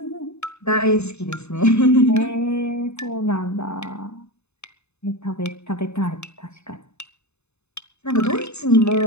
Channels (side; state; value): right; late; 0.81 ms